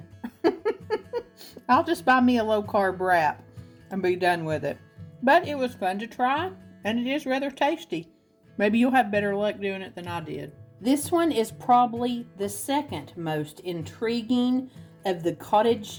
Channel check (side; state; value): both; identical; correlation 1.00